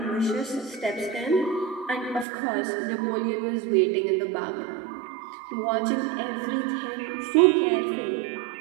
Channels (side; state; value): left; drops out; at 2.2 s